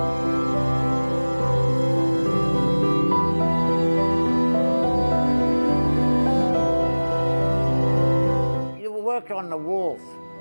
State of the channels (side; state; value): both; inverted; correlation -1.00